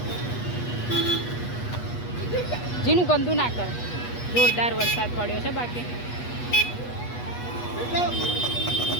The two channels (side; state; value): right; late; 8.3 ms